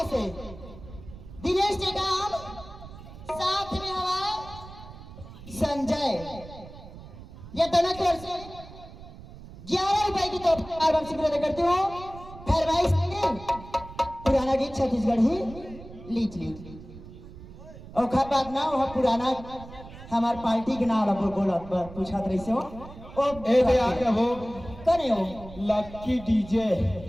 से दिनेश टेकाम, साथ में हवा संजय। ये दोनों की ओर से 11 रुपए की तोहफा वापसी प्रदान करती हूँ। खैर भाई पुराना गीत छत्तीसगढ़ ही लीच ली और खा बात ना वह पुराना हमार पार्टी के नाम बोला पूछा रही से हो ओ ए आके हो करे हो लक्की डीजे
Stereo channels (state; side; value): noise; right; rumble, 16 dB below the sound